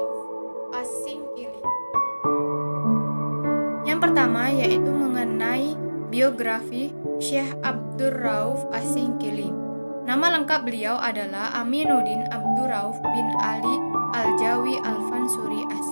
As-Singkili. Yang pertama yaitu mengenai biografi Syekh Abdurrauf As-Singkili. Nama lengkap beliau adalah Aminuddin Abdurrauf bin Ali Al-Jawi Al-Fansuri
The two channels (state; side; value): inverted; both; correlation -1.00